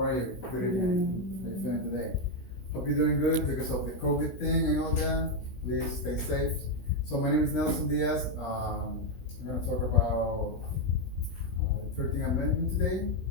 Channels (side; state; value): right; late; 16 ms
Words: you? Good evening. How you feeling today? Hope you're doing good because of the COVID thing and all that. Please stay safe. So my name is Nelson Diaz. I'm gonna talk about 13th Amendment today,